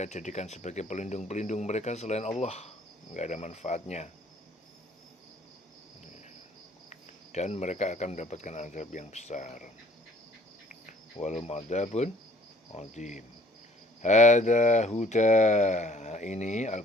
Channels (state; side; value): normal; both; correlation 0.57